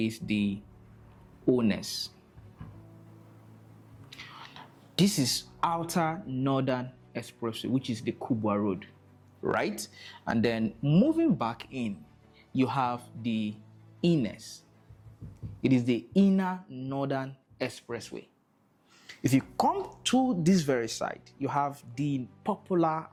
the Ones. This is Outer Northern Expressway, which is the Kubwa Road, right? And then moving back in, you have the Ines. It is the Inner Northern Expressway. If you come to this very side, you have the popular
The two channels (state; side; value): identical; both; correlation 1.00